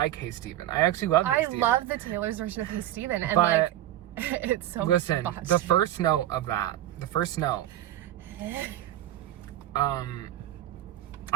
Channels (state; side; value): quieter; left; 13.3 dB